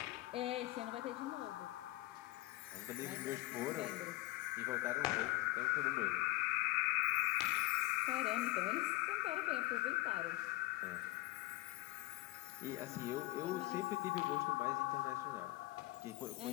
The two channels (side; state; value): right; quieter; 19.0 dB